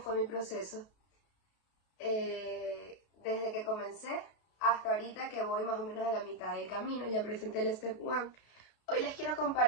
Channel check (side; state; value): right; late; 32 ms